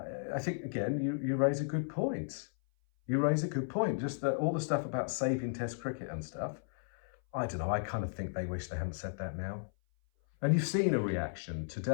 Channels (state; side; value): silent; right; 55 dB below the other